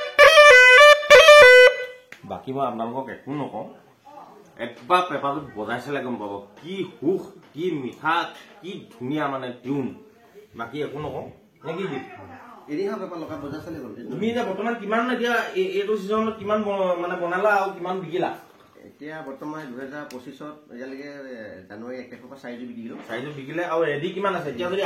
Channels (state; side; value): identical; both; correlation 1.00